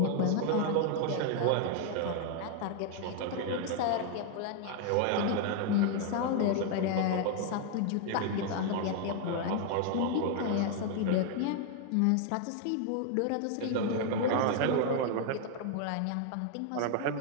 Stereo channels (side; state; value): both; different; correlation 0.00